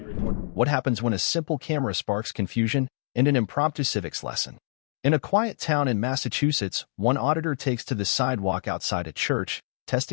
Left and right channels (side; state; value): right; silent; digital silence